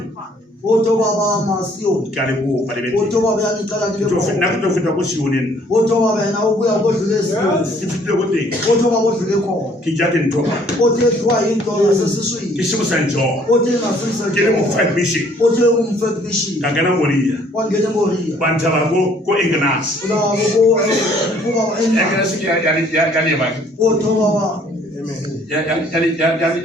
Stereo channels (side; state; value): both; normal; correlation 0.60